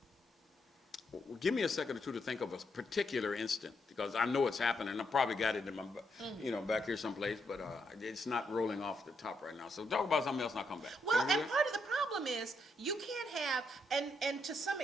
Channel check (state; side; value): normal; both; correlation 0.78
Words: Give me a second or two to think of a particular instant, because I know it's happening. I probably got it in my, back here someplace, but it's not rolling off the top right now. So talk about something else and I'll come back. Well, and part of the problem is you can't have, and to some